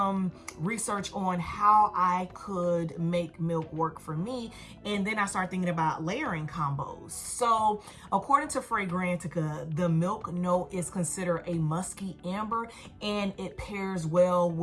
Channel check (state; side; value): identical; both; correlation 1.00